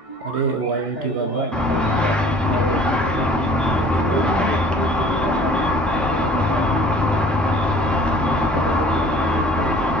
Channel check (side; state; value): both; normal; correlation 0.50